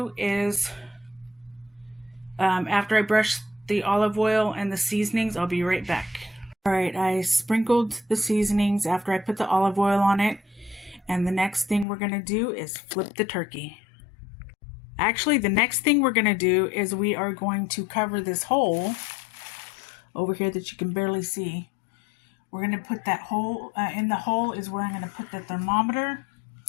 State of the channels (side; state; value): right; drops out; at 11.9 s